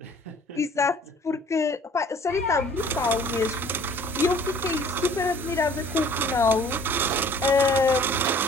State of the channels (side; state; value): both; normal; correlation 0.52